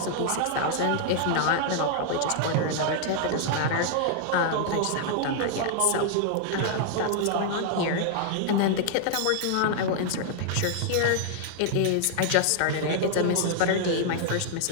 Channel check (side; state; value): both; different; correlation -0.01